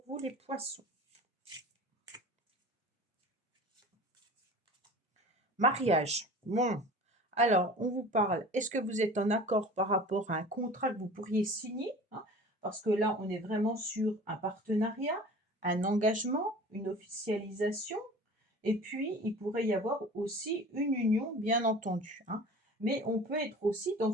vous les poissons? Mariage. Bon, alors on vous parle, est-ce que vous êtes en accord par rapport à un contrat que vous pourriez signer, hein? Parce que là, on est vraiment sur un partenariat, un engagement, une officialisation, et puis il pourrait y avoir aussi une union, bien entendu, hein. Mais on peut être aussi dans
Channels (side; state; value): both; normal; correlation 0.41